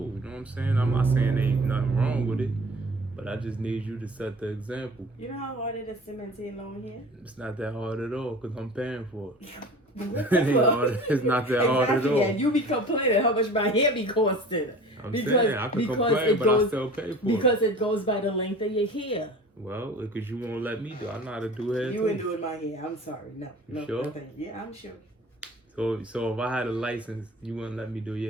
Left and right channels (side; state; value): both; normal; correlation 0.42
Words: you know what I'm saying? I'm not saying there ain't nothing wrong with it, but I just need you to set the example. You know how hard it is to maintain long hair? It's not that hard at all because I'm paying for it. Well, It's not that hard at all. Yeah, you be complaining how much my hair be costing. I'm saying I can complain, but I still pay for it. Because it goes by the length of your hair. Well, because you won't let me do. I know how to do hair. You too. ain't doing my hair. I'm sorry. No. You sure? Nothing. Yeah, I'm sure. So if I had a license, you wouldn't let me do